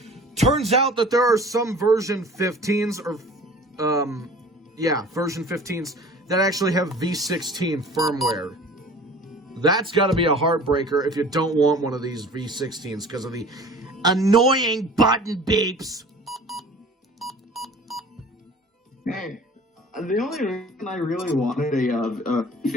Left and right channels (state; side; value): normal; both; correlation 0.44